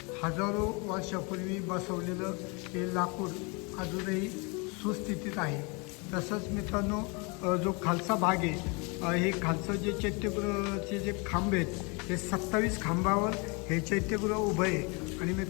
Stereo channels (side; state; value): right; quieter; 30.8 dB